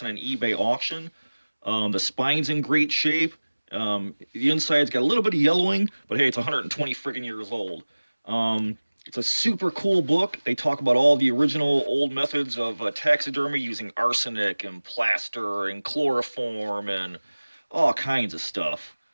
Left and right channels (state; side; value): inverted; both; correlation -1.00